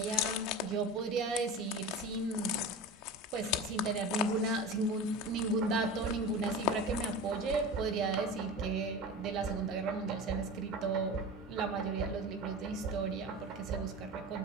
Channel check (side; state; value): both; normal; correlation 0.31